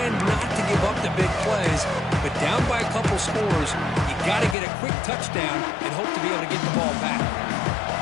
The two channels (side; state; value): right; drops out; at 4.5 s